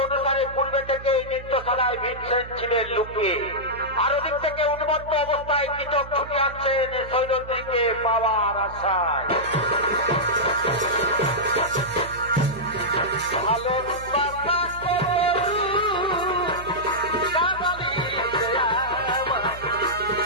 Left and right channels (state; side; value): noise; right; hum, 14 dB below the sound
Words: অনুসারে পূর্বে থেকে এই নৃত্যশালায় ভীমসেন ছিলেন লুকিয়ে। আর ওদিক থেকে উন্মত্ত অবস্থায় কৃষক ছুটে আসছেন সৈরন্ধ্রীকে পাওয়ার আশায়। ভালো